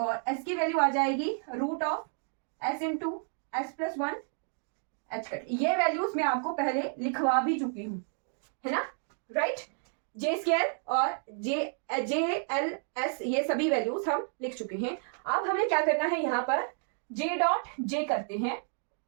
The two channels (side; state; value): left; silent; 57 dB below the other